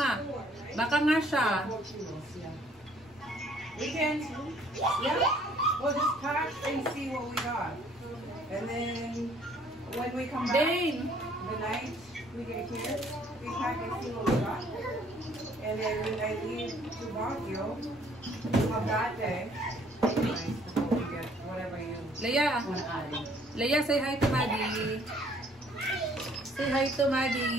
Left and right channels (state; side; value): normal; both; correlation 0.61